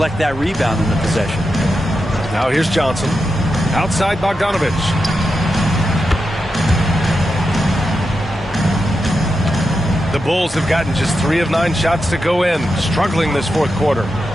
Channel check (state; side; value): normal; both; correlation 0.88